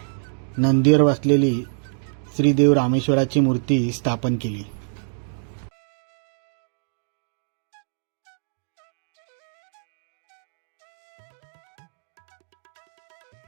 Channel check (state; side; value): silent; left; digital silence